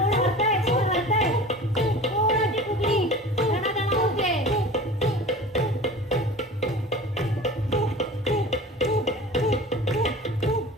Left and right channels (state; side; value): normal; both; correlation 0.39